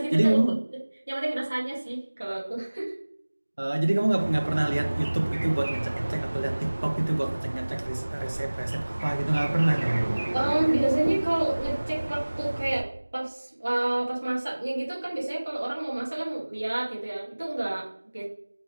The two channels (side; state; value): both; inverted; correlation -1.00